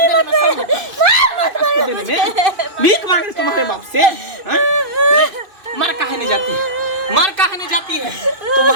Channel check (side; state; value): left; late; 2.6 ms